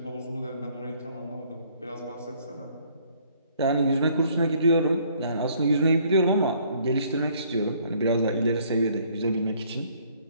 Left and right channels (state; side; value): inverted; both; correlation -0.62